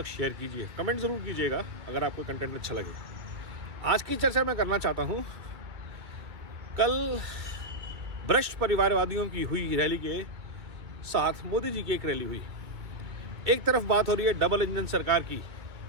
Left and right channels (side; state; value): left; late; 2.3 ms